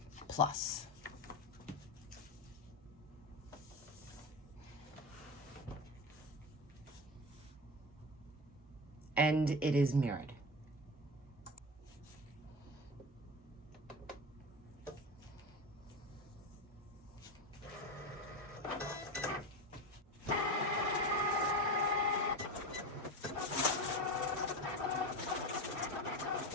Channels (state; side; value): normal; both; correlation 0.24